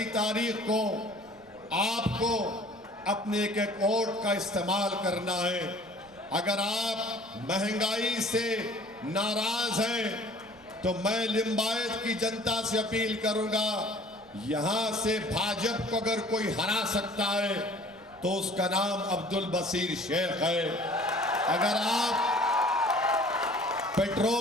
तारीख को आपको अपने एक वोट का इस्तेमाल करना है। अगर आप महंगाई से नाराज हैं तो मैं लिंबायत की जनता से अपील करूंगा, यहां से भाजपा को अगर कोई हरा सकता है तो उसका नाम अब्दुल बशीर शेख है। अगर आप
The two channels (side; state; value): right; noise; rumble, 28 dB below the sound